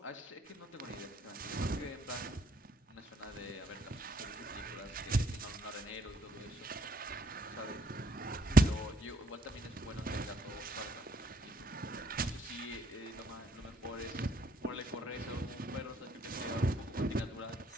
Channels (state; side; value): normal; both; correlation 0.67